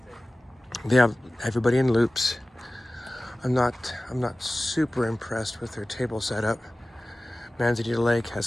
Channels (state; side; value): normal; both; correlation 0.97